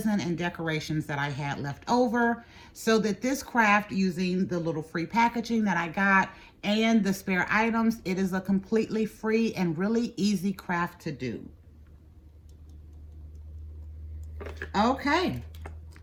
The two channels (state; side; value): identical; both; correlation 1.00